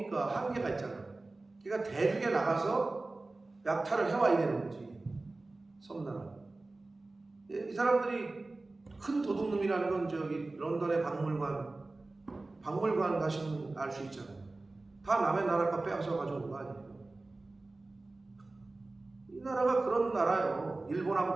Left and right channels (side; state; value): left; quieter; 3.2 dB